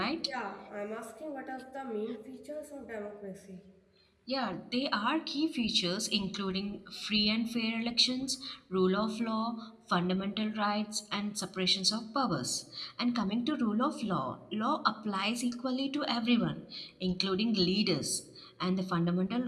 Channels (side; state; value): both; identical; correlation 1.00